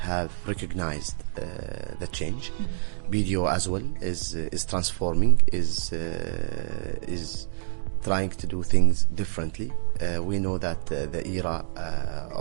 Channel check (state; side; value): silent; left; digital silence